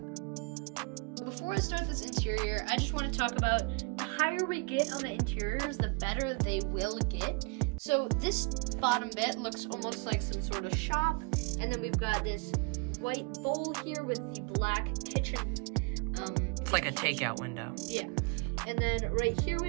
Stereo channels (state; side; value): quieter; left; 31.0 dB